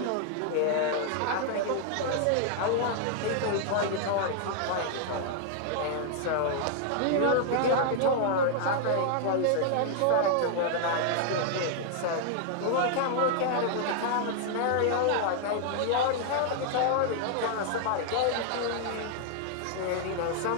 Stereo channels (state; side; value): different; both; correlation 0.00